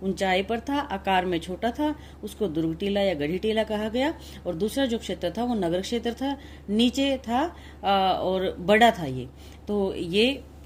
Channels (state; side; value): identical; both; correlation 1.00